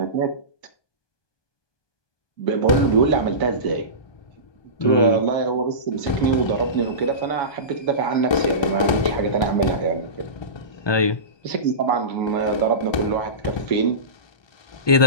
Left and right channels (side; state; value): right; late; 1.3 ms